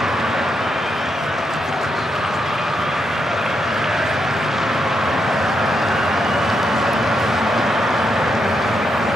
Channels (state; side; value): normal; both; correlation 0.81